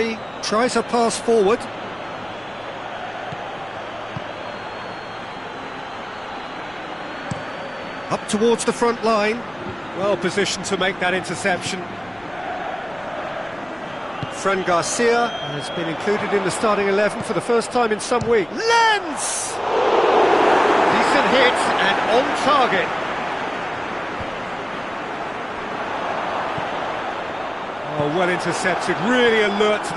tries a pass forward. Up towards the front line. Well positioned to make that interception. Fran Garcia has been included in the starting 11 for the first time in some weeks. Lens! Decent hit and on target. Oh, well intercepted, really alert to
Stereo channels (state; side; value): noise; left; rumble, 27 dB below the sound